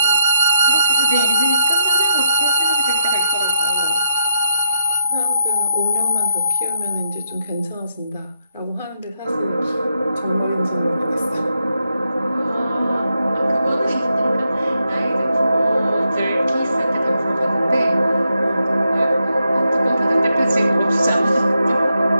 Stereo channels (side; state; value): both; inverted; correlation -0.81